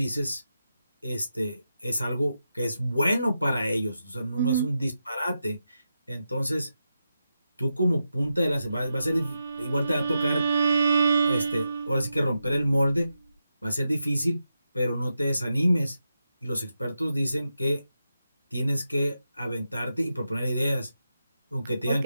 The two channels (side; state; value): both; inverted; correlation -0.87